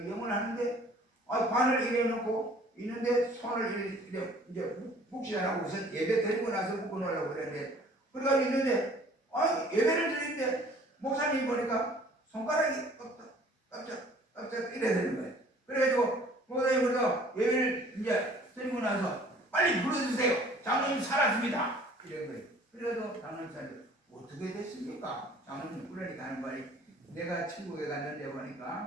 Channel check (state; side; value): normal; both; correlation 0.52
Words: 영을 하는데 관을 이래 놓고 있는데 손을 이제 묵시 안 하고 우선 예배 드리고 나서 묶어 놓으려고 그랬는데 그래가지고 있는데 예배를 드리는데 목사님이 보니까 손가락이 깜짝 이래 되는 거예요. 그래가지고 목사님이 그래서 예배를 이제 드리고 나서 빨리 불러주세요. 장로님 살았습니다. 이런 거예요. 그래도 장로님 살았어요. 어떻게 됐습니까? 장로님 그러니까 하는 말이 내가 천국에 갔는데